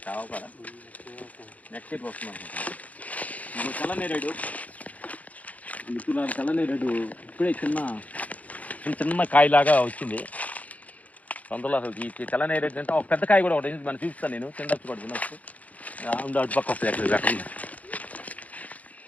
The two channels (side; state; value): right; late; 0.072 ms